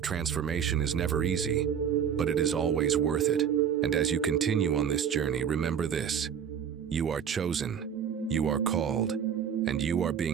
transformation is never easy, but it is always worth it. And as you continue on this journey, remember this: you are chosen, you are called, and you are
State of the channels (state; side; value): quieter; left; 8.1 dB